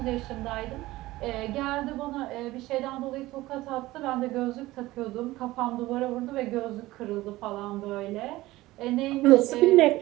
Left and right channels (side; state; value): left; quieter; 18.0 dB